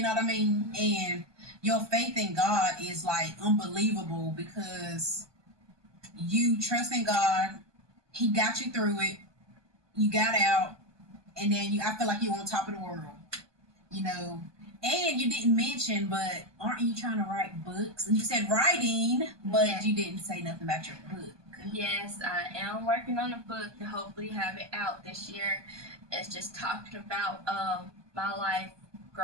know what I mean? And your faith in God is like unbelievable because you trust in God. He got you through it. You got out, and then I feel like you're on top of the world. And you didn't mention, but aren't you trying to write books? And you said writing, but Yeah. you didn't say nothing about your book. Yes, I am working on a book to hopefully have it out this year. It's just talking about my life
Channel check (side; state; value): left; late; 1.2 ms